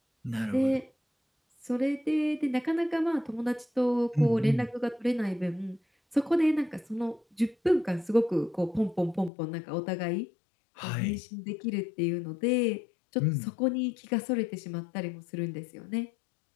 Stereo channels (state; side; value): drops out; right; at 9.3 s